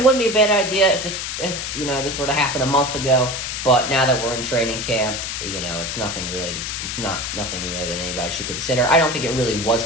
wouldn't be a bad idea if this were to happen a month ago. But now that we're in training camp, it's nothing really that anybody should consider. I don't think it really was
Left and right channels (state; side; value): noise; left; hiss, 4 dB below the sound